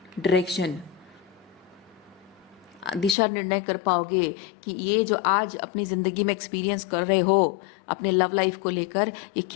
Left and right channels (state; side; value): drops out; right; at 3.2 s